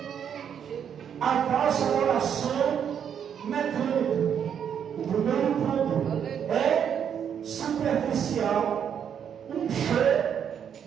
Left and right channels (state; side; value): quieter; left; 8.3 dB